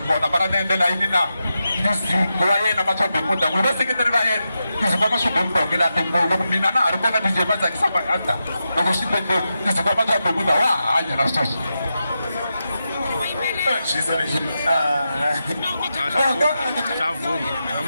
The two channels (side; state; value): both; inverted; correlation -0.88